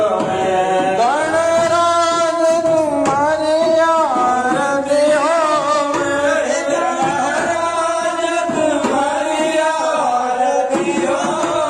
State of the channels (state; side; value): identical; both; correlation 1.00